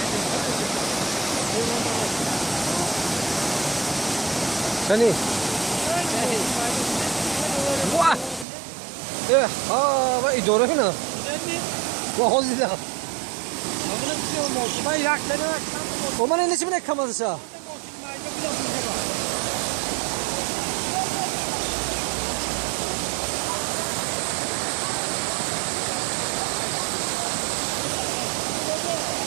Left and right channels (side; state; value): left; drops out; at 8.5 s